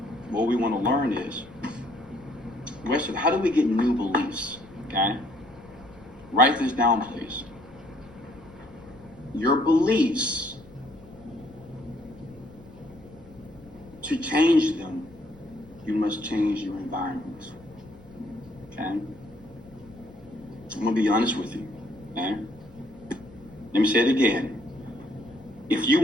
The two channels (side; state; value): left; noise; rumble, 24 dB below the sound